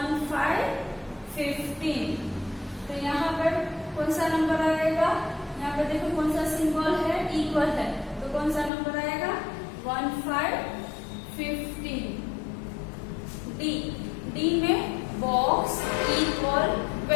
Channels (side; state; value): right; drops out; at 8.7 s